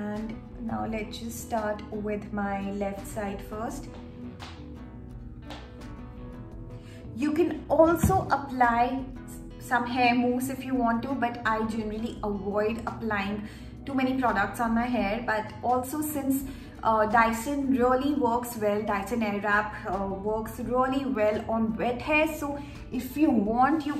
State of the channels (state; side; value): identical; both; correlation 1.00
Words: now let's just start with my left side first. You can also apply some hair mousse if you want to, but I generally avoid applying too many products on my hair. But also, since Dyson really works well, Dyson Airwrap works really well on wet hair. So if you want, you